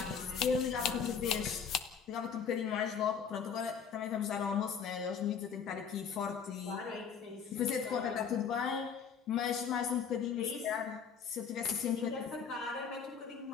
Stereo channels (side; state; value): right; quieter; 6.8 dB